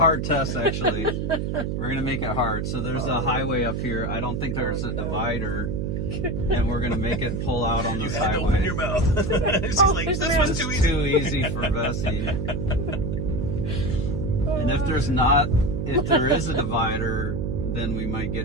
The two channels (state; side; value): noise; right; hum, 1 dB below the sound